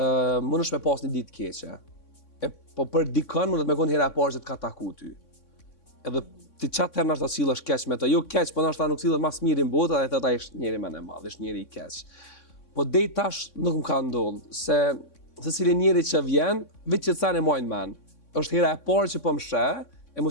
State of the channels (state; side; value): late; right; 3.6 ms